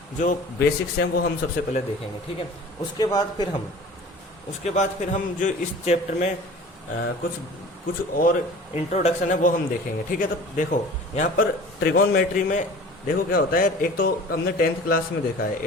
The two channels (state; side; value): normal; both; correlation 0.43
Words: जो बेसिक्स हैं वो हम सबसे पहले देखेंगे, ठीक है। उसके बाद फिर हम जो इस चैप्टर में कुछ और इंट्रोडक्शन है वो हम देखेंगे, ठीक है। तो देखो यहाँ पर ट्रिगोनमेट्री में देखो क्या होता है। एक तो हमने टेंथ क्लास में देखा है,